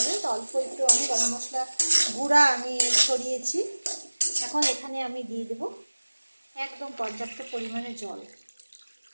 তো অল্প একটু আমি গরম মশলা গুঁড়া আমি ছড়িয়েছি। এখন এখানে আমি দিয়ে দেব একদম পর্যাপ্ত পরিমাণে জল।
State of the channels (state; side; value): inverted; both; correlation -1.00